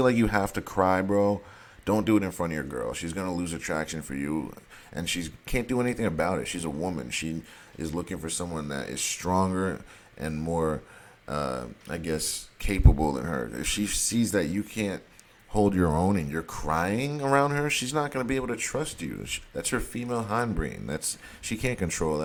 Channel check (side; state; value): both; identical; correlation 1.00